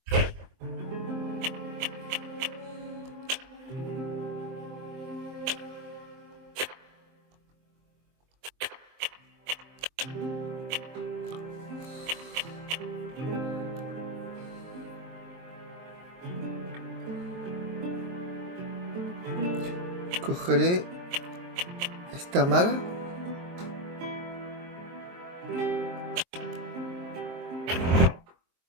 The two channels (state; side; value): late; left; 23 ms